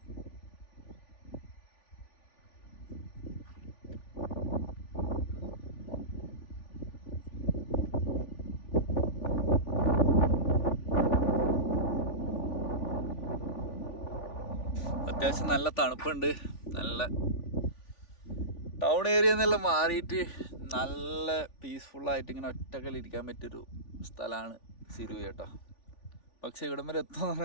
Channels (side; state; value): right; late; 3.5 ms